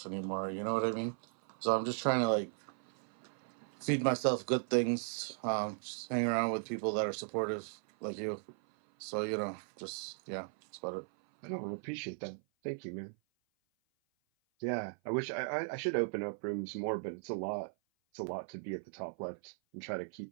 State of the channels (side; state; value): left; silent; 53 dB below the other